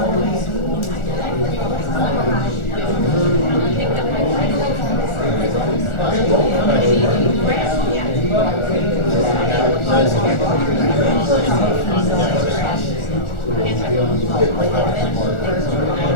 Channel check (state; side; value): late; right; 1.4 ms